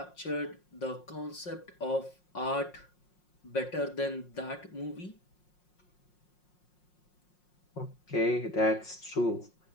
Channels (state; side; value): late; right; 5.6 ms